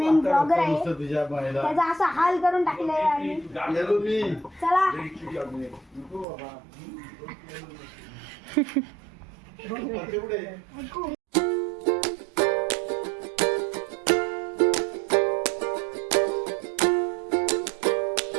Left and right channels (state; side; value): drops out; left; at 6.2 s